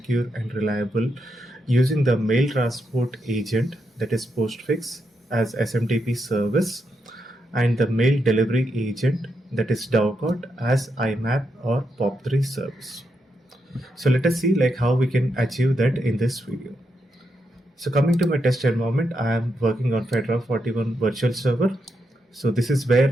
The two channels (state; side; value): normal; both; correlation 0.82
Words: and reliable using the mail transport agent, that is Postfix, as SMTP service, and the mail delivery agent, that is Dovecot, as IMAP or POP3 service. So let us see how we can achieve that in this video. So coming to my test environment, I am working on Fedora 41 virtual server. So this is where